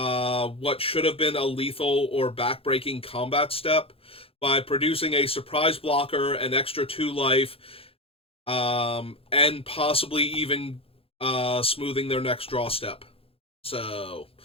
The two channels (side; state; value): right; late; 0.27 ms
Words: should have been a lethal or backbreaking combat step by producing a surprise blocker, an extra 2 life, and possibly even smoothing their next draw step. So